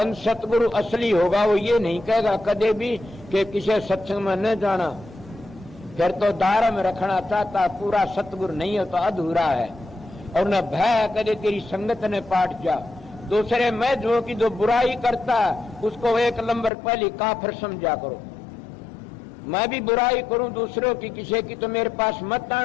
सतगुरु असली होगा, वो ये नहीं कहेगा कदे भी कि किसी सत्संग में न जाना, फिर तो दायरा में रखना चाहता, पूरा सतगुरु नहीं है तो अधूरा है। और न भय कदे तेरी संगत ने पाट जा, दूसरे में जो कि जो बुराई करता उसको एक नंबर पहले काफिर समझा करो। मैं भी बुराई करूं दूसरों की, किसी की तो मेरे पास मत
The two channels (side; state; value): right; drops out; at 16.7 s